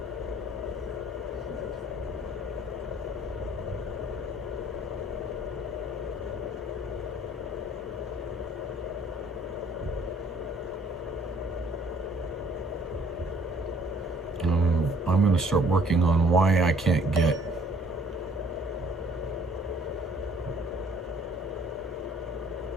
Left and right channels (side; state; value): both; normal; correlation 0.58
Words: I'm going to start working on why I can't get